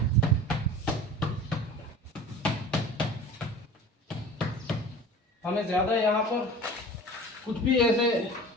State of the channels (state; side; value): normal; both; correlation 0.39